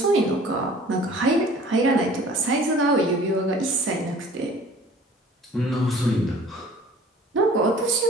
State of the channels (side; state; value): both; normal; correlation 0.49